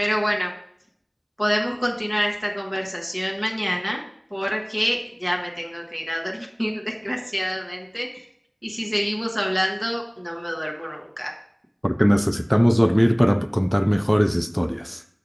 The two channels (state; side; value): identical; both; correlation 1.00